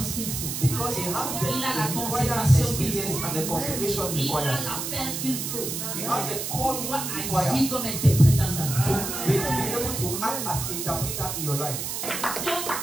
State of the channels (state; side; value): noise; right; hiss, 4 dB below the sound